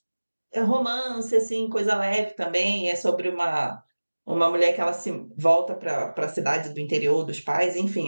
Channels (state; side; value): inverted; both; correlation -1.00